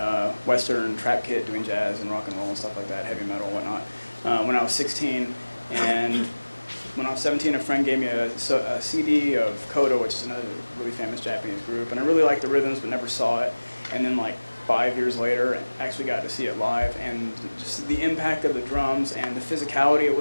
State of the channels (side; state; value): both; inverted; correlation -1.00